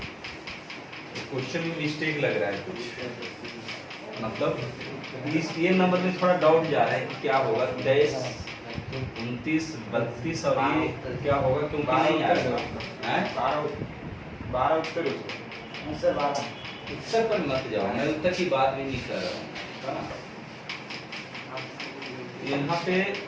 क्वेश्चन में मिस्टेक लग रहा है कुछ, मतलब इस ये नंबर में थोड़ा डाउट जा रहा है कि क्या होगा 23, 29, 32 और ये क्या होगा, क्योंकि नहीं आ रहा है 12 उत्तर उत्तर पर मत जाओ, मैं उत्तर की बात भी नहीं कर रहा हूँ। यहाँ पे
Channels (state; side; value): identical; both; correlation 1.00